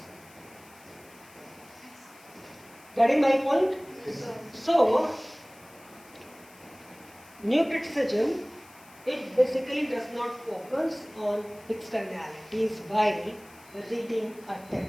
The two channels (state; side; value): noise; left; hiss, 24 dB below the sound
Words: Getting my point? So, new criticism, it basically does not focus on externalities while reading a